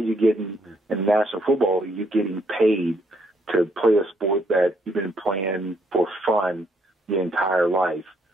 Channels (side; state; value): both; normal; correlation 0.72